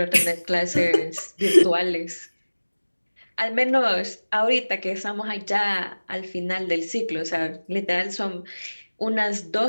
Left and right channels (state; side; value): inverted; both; correlation -1.00